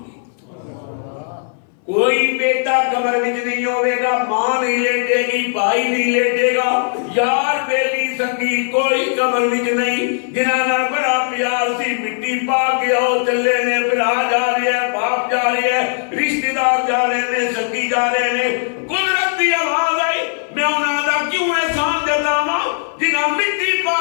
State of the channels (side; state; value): right; silent; 60 dB below the other